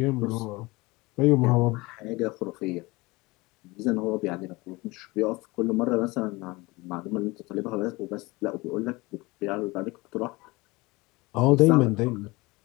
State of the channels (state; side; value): quieter; right; 23.0 dB